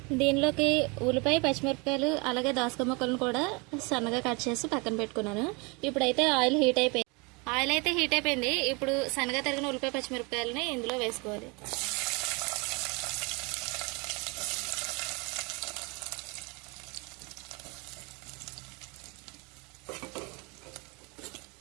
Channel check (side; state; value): left; quieter; 29.4 dB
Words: దీనిలోకి ఉల్లిపాయ, పచ్చిమిరపకాయలు అలాగే దోసకాయ ముక్కలను కూడా సన్నగా కట్ చేసి పక్కన పెట్టుకున్నాను. ఇప్పుడైతే ఆయిల్ అయితే హీట్ అయిపోయింది. ఇప్పుడు సన్నగా తరిగిన ఉల్లిపాయ, పచ్చిమిరపకాయలని ఇందులో వేసుకోవాలి.